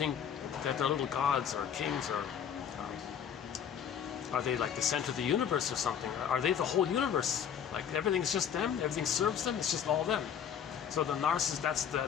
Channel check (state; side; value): quieter; right; 8.3 dB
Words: that they're little gods or kings, or are they like the center of the universe or something? Are they the whole universe? Like everything's just them, everything serves them, it's just all them. So the narcissist,